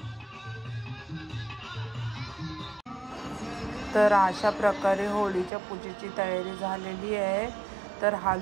तर अशा प्रकारे होळीच्या पूजेची तयारी झालेली आहे. तर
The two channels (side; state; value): left; drops out; at 5.5 s